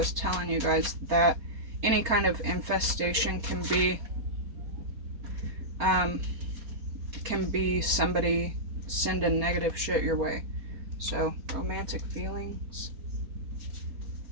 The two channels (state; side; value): late; left; 4.3 ms